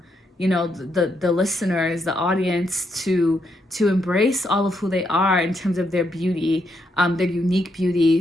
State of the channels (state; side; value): normal; both; correlation 0.78